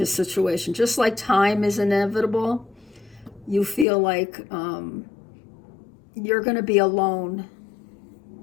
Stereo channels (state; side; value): drops out; right; at 3.9 s